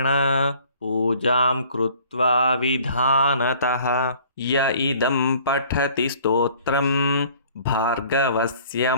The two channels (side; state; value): both; inverted; correlation -0.53